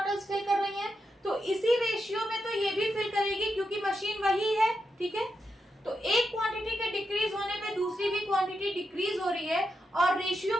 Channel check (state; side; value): normal; both; correlation 0.85